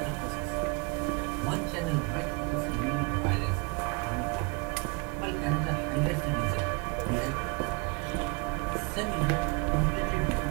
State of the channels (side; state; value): left; quieter; 31.1 dB